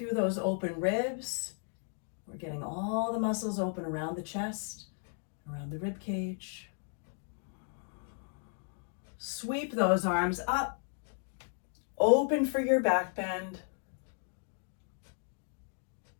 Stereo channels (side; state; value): right; silent; 54 dB below the other